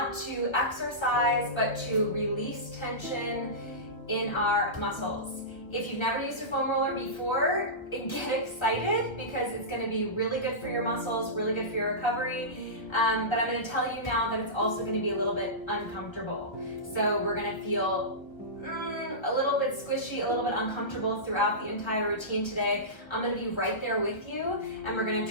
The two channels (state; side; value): late; right; 1.1 ms